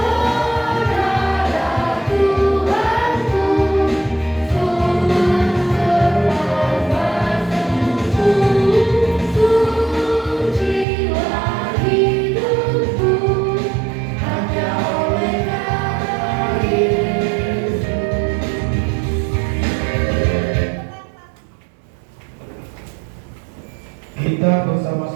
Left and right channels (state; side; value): drops out; left; at 10.9 s